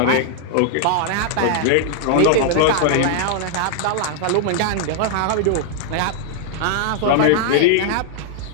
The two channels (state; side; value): different; both; correlation 0.00